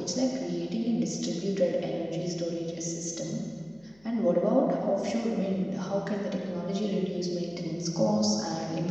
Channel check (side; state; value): left; noise; hum, 29 dB below the sound